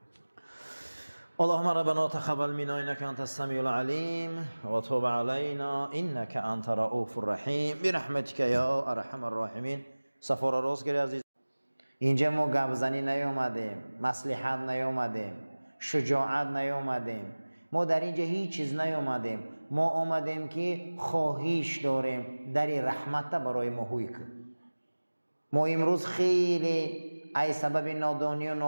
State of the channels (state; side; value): inverted; both; correlation -1.00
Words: اللهم ربنا تقبل منا انك انت السميع العليم وتوب علينا انك انت رؤوف الرحيم برحمتك يا ارحم الراحمين. سفر راست گیری عزیز، اینجا ما گپزنی نیومدیم، مصلحت نیومدیم، شجاعت نیومدیم، ما در اینجا هیچ چیز نیومدیم. ما آمدیم که خواهش داریم در رحمت برای ما هوی کن. ما امروز خیلی ای سبب نادانی و